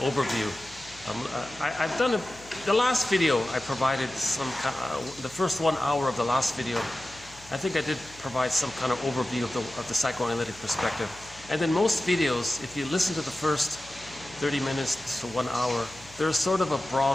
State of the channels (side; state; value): left; noise; hum, 22 dB below the sound